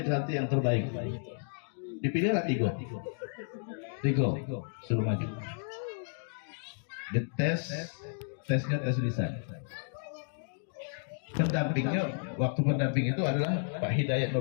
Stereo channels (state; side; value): silent; right; digital silence